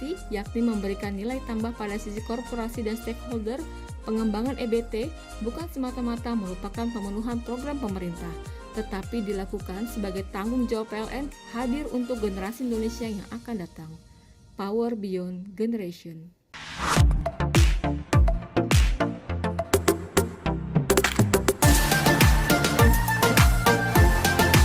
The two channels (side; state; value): both; identical; correlation 1.00